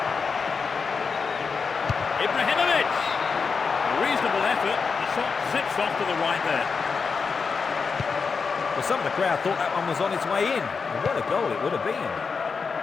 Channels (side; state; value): right; quieter; 5.2 dB